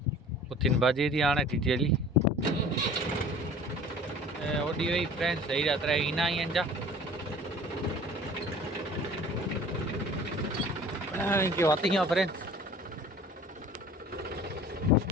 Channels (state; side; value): normal; both; correlation 0.45